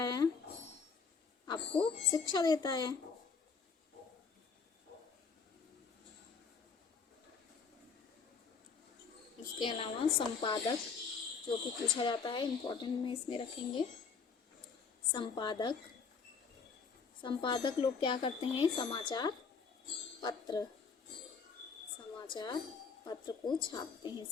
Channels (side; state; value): right; quieter; 5.5 dB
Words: आपको शिक्षा देता है। इसके अलावा संपादक, जो कि पूछा जाता है, इम्पोर्टेंट में इसमें रखेंगे। संपादक, संपादक लोग क्या करते हैं? समाचार पत्र, समाचार पत्र को छापते हैं,